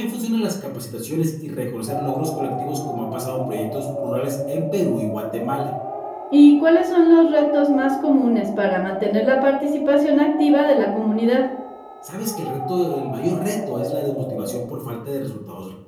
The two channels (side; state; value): both; identical; correlation 1.00